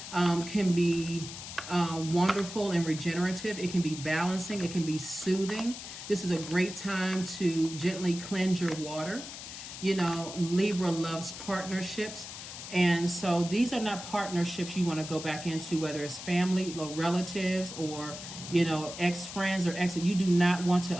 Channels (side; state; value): left; noise; hiss, 11 dB below the sound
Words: can be wonderful and regenerative. It can be balancing. It can be soothing. This is a great time to gently cleanse your water. You know, Libra loves partnerships. And so these are not partnerships you want to go back into, whether it's family or relatives or, you know, ex-friends or ex. You do not want to